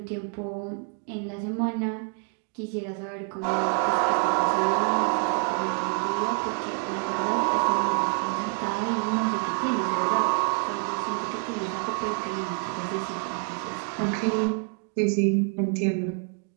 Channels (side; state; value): left; quieter; 37.7 dB